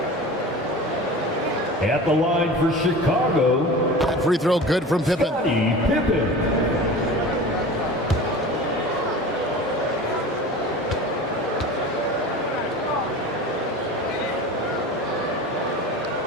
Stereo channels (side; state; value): both; normal; correlation 0.36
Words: At the line for Chicago. That free throw good from Pippen. Pippen.